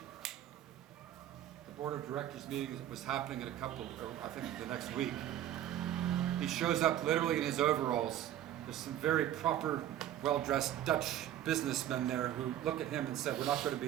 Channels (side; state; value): left; quieter; 11.8 dB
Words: The board of directors meeting was happening in I think the next week. He shows up literally in his overalls. There's some very proper, well-dressed Dutch businessmen there who look at him and said, we're not going to